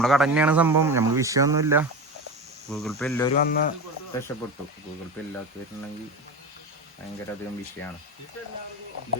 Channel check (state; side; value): normal; both; correlation 0.25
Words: കട തന്നെയാണ് സംഭവം. നമുക്ക് വിഷയമൊന്നുമില്ല. ഗൂഗിൾ പേ എല്ലാവരും വന്ന് രക്ഷപ്പെട്ടു. ഗൂഗിൾ പേ ഇല്ലാത്തവരുണ്ടെങ്കിൽ ഭയങ്കര അധികം വിഷയമാണ്.